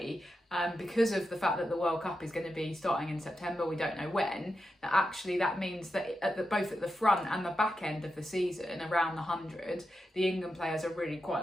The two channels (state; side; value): normal; both; correlation 0.88